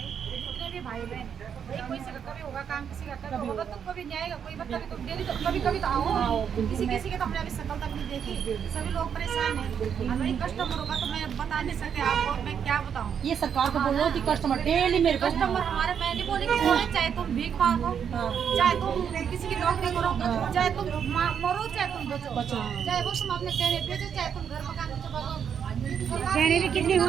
जितने भी भाई बहन हैं, कोई से कभी होगा काम, किसी का कभी होगा, तो कभी नहीं आएगा, कोई कभी तो डेली तो कभी तो आओ, किसी के तो हमने अभी शकल तक नहीं देखी, सभी लोग परेशान हैं। हमारी कस्टमर होगा तो मैं बता नहीं सकते आपको, मैं क्या बताऊँ। ये सरकार को बोलो कि कस्टमर डेली मेरे कस्टमर हमारे, मैं नहीं बोली कि चाहे तुम भीख मांगो, चाहे तुम किसी की नौकरी करो, चाहे तुम मरो, चाहे तुम बचो, चाहे वो तुम अपने कहने बेचो, चाहे तुम घर मकान बेचो, कहने भी कितने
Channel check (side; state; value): left; quieter; 7.8 dB